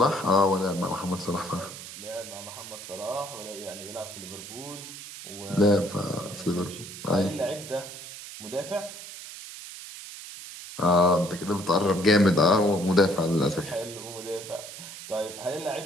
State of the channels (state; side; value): noise; right; hiss, 12 dB below the sound